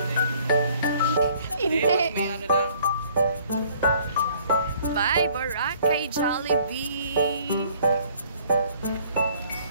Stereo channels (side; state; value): both; inverted; correlation -0.59